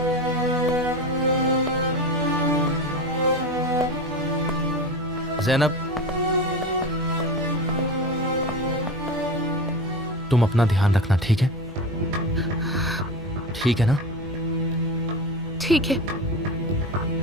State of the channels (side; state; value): left; noise; rumble, 21 dB below the sound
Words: ज़ैनब, तुम अपना ध्यान रखना, ठीक है? ठीक है ना? ठीक है।